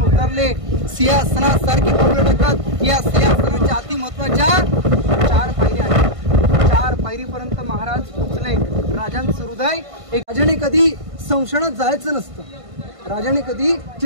उतरले, सिंहासनासारखी पावलं टाकत या सिंहासनाच्या अति महत्वाच्या 4 पायऱ्या आहेत। 4 पायरीपर्यंत महाराज पोहोचले। राजांचं हृदय एक, राजाने कधी संशयात जायचं नसतं, राजाने कधी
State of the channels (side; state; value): left; late; 1.5 ms